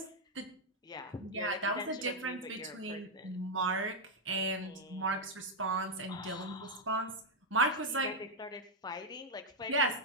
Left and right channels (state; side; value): normal; both; correlation -0.01